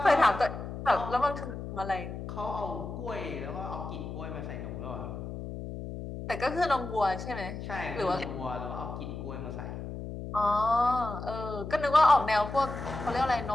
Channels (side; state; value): left; noise; hum, 8 dB below the sound